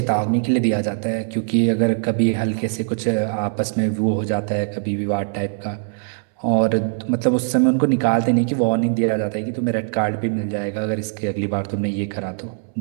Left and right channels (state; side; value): silent; left; 65 dB below the other